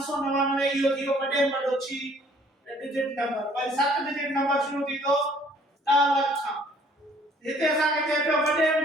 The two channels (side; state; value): both; normal; correlation 0.59